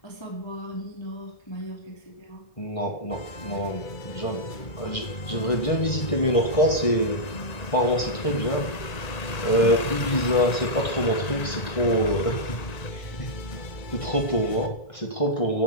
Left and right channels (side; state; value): right; late; 1.9 ms